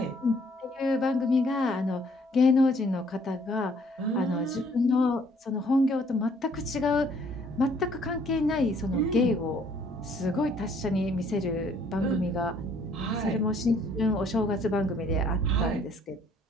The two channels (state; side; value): normal; both; correlation 0.62